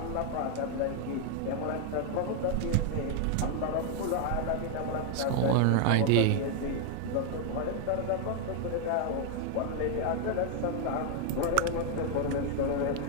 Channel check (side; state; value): both; different; correlation 0.00